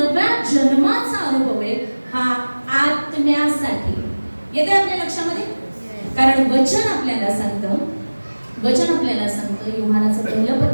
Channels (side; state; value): both; inverted; correlation -1.00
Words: जन्माचा अनुभव आहे हा आत्म्यासाठी येते आपल्या लक्षामध्ये. कारण वचन आपल्याला सांगतं योहानाचं पहिलं